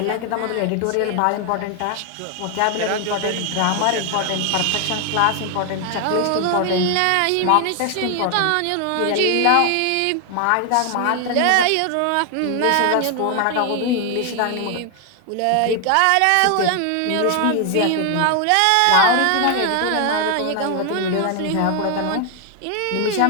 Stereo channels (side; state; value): both; different; correlation 0.00